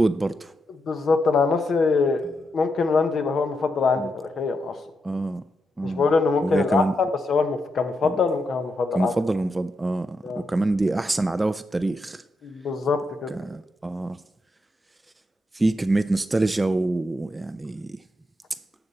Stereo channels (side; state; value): both; normal; correlation 0.84